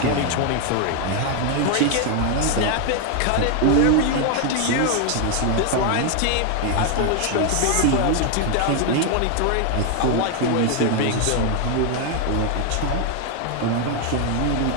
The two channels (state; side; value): different; both; correlation 0.01